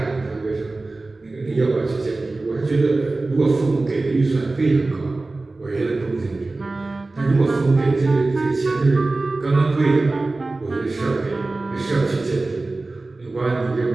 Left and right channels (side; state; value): left; quieter; 3.3 dB